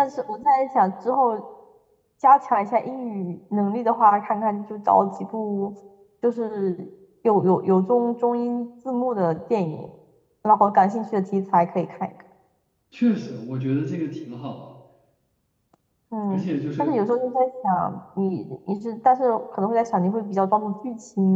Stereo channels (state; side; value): identical; both; correlation 1.00